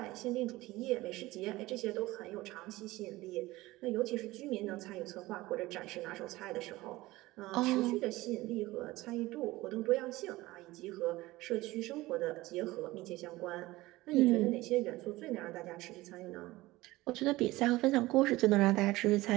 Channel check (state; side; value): quieter; left; 18.9 dB